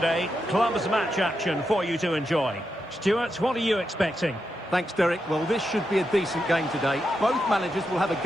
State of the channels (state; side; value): normal; both; correlation 0.86